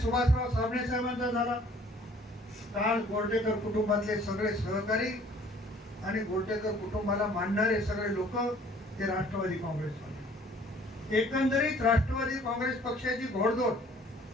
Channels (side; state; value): both; normal; correlation 0.55